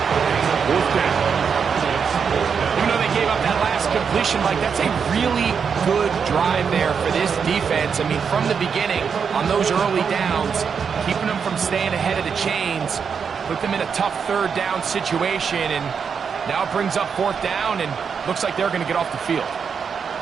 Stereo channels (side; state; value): left; quieter; 6.4 dB